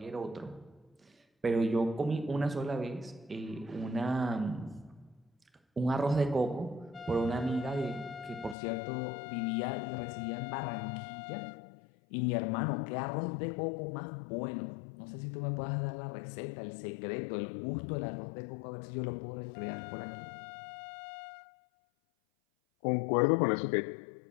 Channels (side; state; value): right; drops out; at 8.6 s